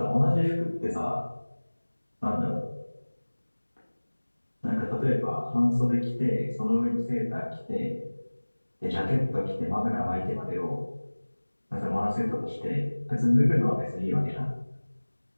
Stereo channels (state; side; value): inverted; both; correlation -1.00